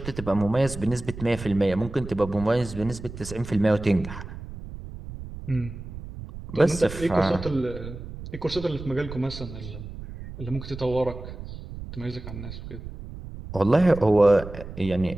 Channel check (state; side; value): noise; right; rumble, 11 dB below the sound